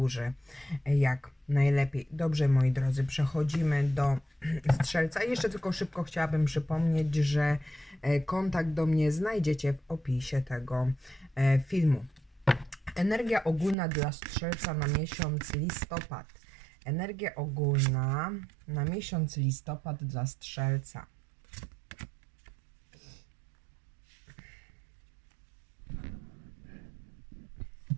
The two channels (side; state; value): left; drops out; at 13.8 s